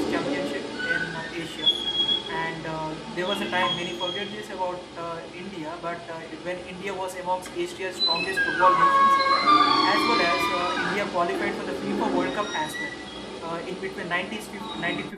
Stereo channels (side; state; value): both; identical; correlation 1.00